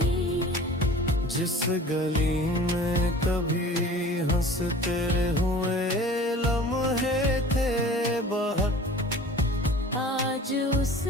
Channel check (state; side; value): normal; both; correlation 0.44